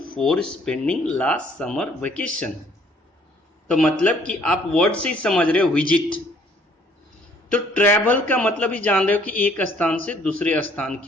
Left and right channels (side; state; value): both; normal; correlation 0.61